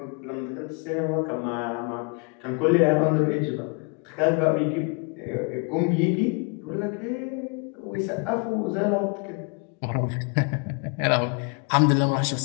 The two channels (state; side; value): quieter; right; 34.7 dB